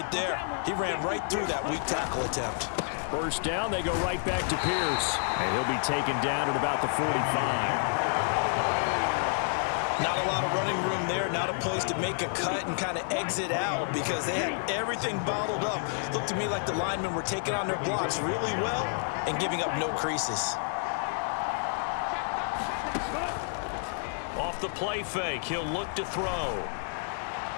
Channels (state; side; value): silent; right; digital silence